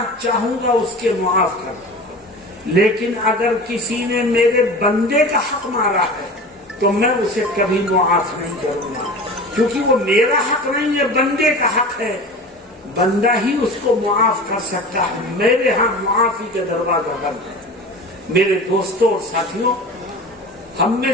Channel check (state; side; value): normal; both; correlation 0.35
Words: چاہوں گا اس کے معاف کر دوں گا، لیکن اگر کسی نے میرے بندے کا حق مارا ہے تو میں اسے کبھی معاف نہیں کروں گا، کیونکہ وہ میرا حق نہیں ہے، بندے کا حق ہے. بندہ ہی اس کو معاف کر سکتا ہے، میرے ہاں معافی کا دروازہ بند ہے. میرے دوستوں اور ساتھیوں، ہم میں